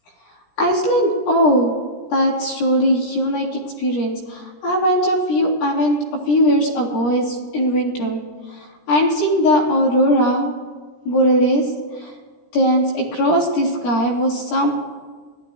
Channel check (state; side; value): late; right; 17 ms